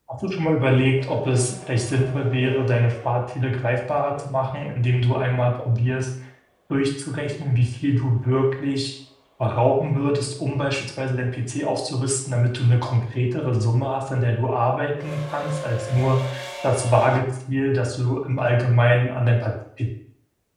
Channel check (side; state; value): both; identical; correlation 1.00